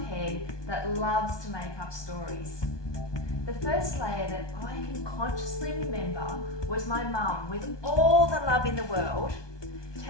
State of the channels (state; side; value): late; right; 1.2 ms